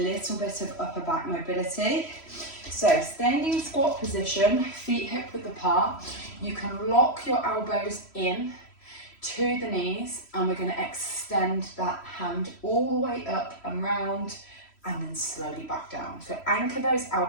bit of upper back mobility. So standing squat position, feet hip width apart, you can lock your elbows in to the knees and we're going to extend that hand all the way up and round and then slowly back down. So anchor those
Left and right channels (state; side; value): late; right; 3.1 ms